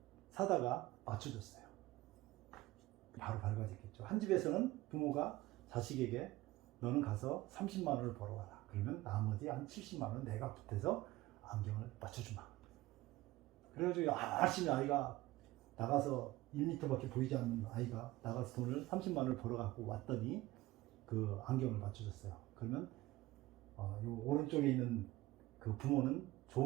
사다가 맞춰줬어요. 바로 밝아졌겠죠. 한 집에서는 부모가 자식에게 너는 가서 30만 원을 벌어와라. 그러면 나머지 한 70만 원 내가 보태서 안경을 맞춰주마. 그래가지고 열심히 아이가 나가서 1m밖에 보이지 않는 아이가 나가서 돈을 30만 원을 벌어갖고 왔더니 그 안경을 맞춰줬어요. 그러면 요 오른쪽에 있는 그 부모는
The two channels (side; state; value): left; quieter; 18.2 dB